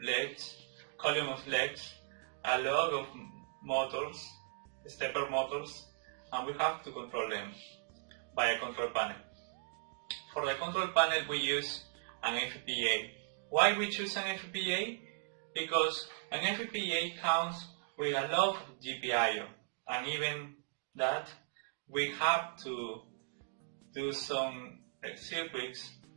legs, column of legs, a lot of motors, stepper motors, and we have to control them by a control panel. For the control panel we use an FPGA. Why we choose an FPGA? Because an FPGA comes with a lot of GPIO, and even that we have to do some circuits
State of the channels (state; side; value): silent; left; digital silence